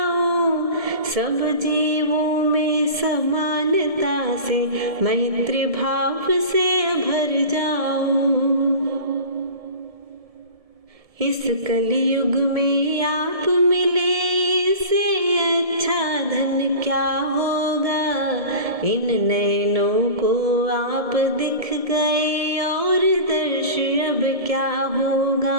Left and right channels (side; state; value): left; late; 1.7 ms